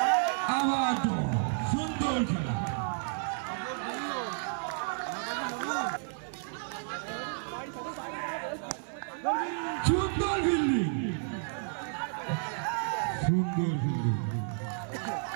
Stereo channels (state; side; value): silent; left; 57 dB below the other